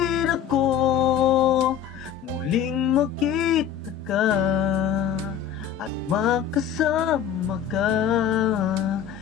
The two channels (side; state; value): right; quieter; 8.8 dB